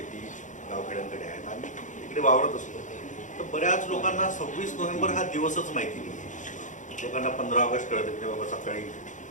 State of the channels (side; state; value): right; late; 0.36 ms